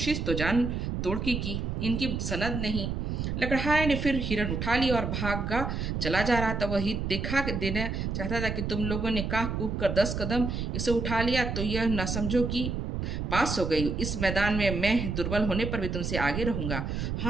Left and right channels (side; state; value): right; noise; rumble, 2 dB below the sound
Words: तो जान तोड़ की। इनकी सनद नहीं। लकड़हारे ने फिर हिरन उठा लिया और भागा चला जा रहा था। वह दिखा देना चाहता था कि तुम लोगों ने काह कूद कर 10 कदम इसे उठा लिया तो यह न समझो कि पास हो गई। इस मैदान में मैं दुर्बल होने पर भी तुमसे आगे रहूंगा।